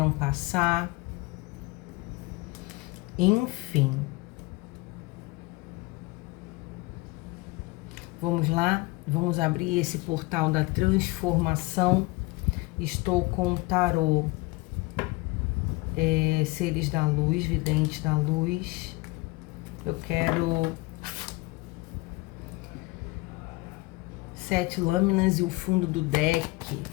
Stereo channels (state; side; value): quieter; right; 23.6 dB